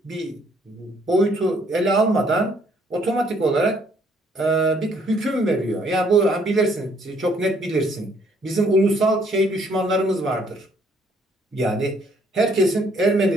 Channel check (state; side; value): normal; both; correlation 0.65